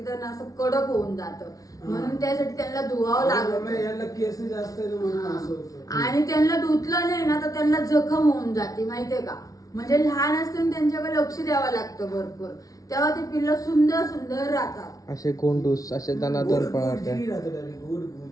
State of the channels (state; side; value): late; right; 0.17 ms